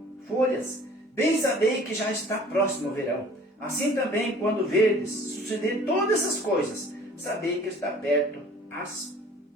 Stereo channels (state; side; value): normal; both; correlation 0.49